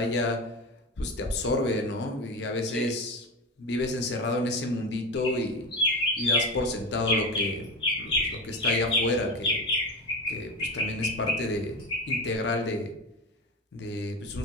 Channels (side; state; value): both; normal; correlation 0.22